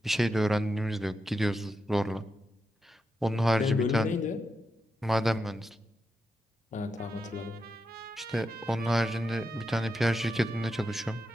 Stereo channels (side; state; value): both; normal; correlation 0.87